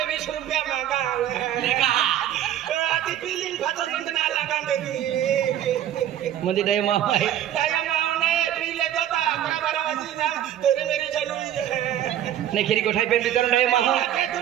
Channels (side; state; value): left; quieter; 11.4 dB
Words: 20 रुपया मांगा देखा आती बिलिंग फसन ना लगा दे मुझे दे मां है काय मावने पीले गोता नाही खिरी गोठाई पेन वितरण आहे माहू काय